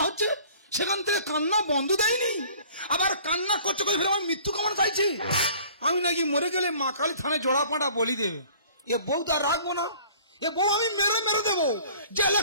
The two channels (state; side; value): inverted; both; correlation -0.51